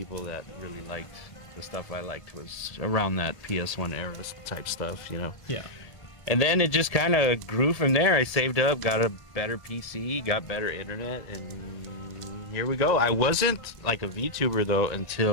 that really liked the stuff I liked was around that PS1 era type stuff, you know? Yeah. And then it just kind of grew from there. I saved up, got a better PC, got better internet, and here we go. I wasn't like a VTuber though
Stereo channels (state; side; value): late; right; 1.7 ms